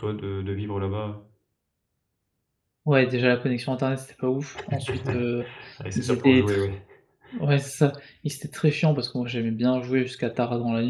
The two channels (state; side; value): identical; both; correlation 1.00